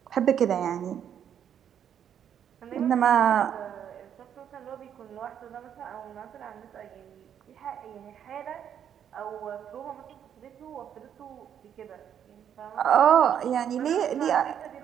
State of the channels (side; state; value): left; quieter; 9.1 dB